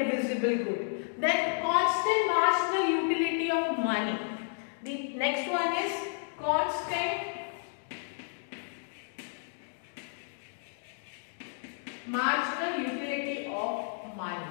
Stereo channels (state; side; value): silent; right; 57 dB below the other